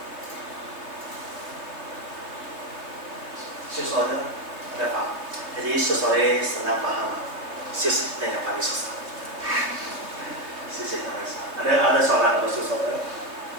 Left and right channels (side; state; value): left; late; 3.1 ms